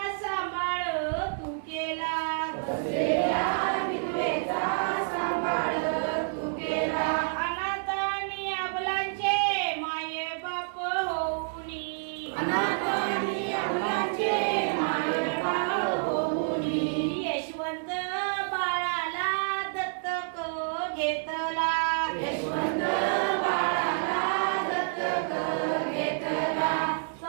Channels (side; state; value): left; silent; digital silence